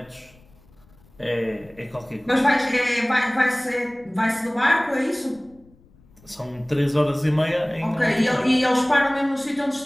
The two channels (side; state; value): left; noise; rumble, 28 dB below the sound